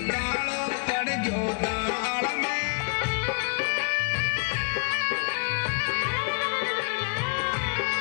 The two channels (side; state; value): right; quieter; 34.1 dB